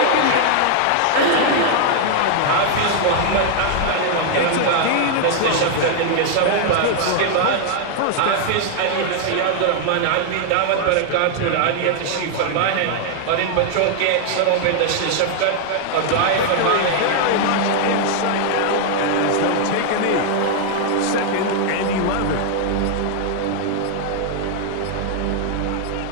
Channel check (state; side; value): different; both; correlation 0.00